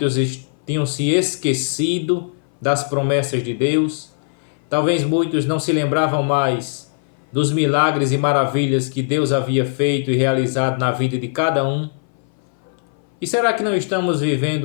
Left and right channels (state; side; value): silent; right; 60 dB below the other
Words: tinham se esquecido das promessas de Deus, Talvez muitos não se lembravam mais dos milagres e maravilhas que Deus havia feito e realizado na vida de cada um. E será que não estamos